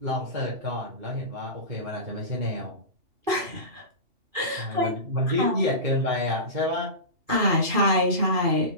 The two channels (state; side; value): late; left; 2.7 ms